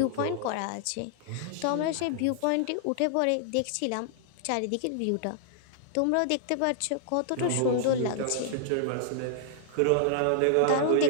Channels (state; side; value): different; both; correlation -0.01